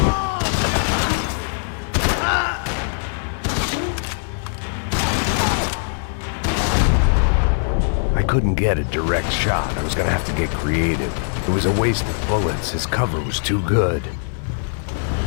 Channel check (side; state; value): right; silent; 60 dB below the other